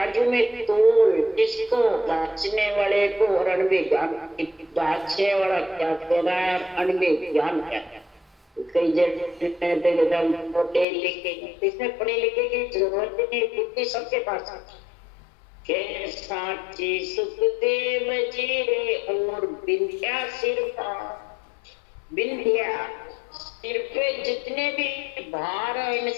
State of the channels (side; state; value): right; drops out; at 10.9 s